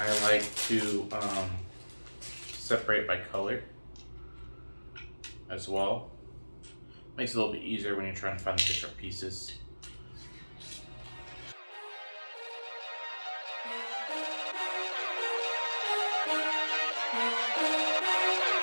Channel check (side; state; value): both; inverted; correlation -1.00